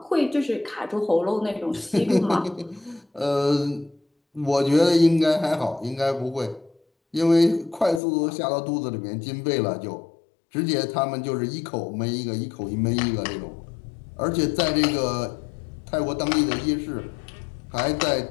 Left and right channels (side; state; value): right; drops out; at 8.0 s